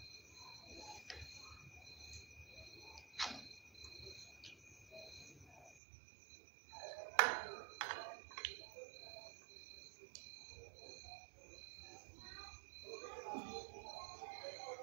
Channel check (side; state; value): left; drops out; at 5.8 s